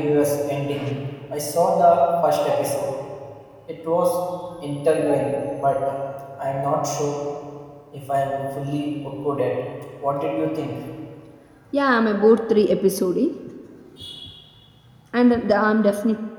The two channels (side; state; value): both; identical; correlation 1.00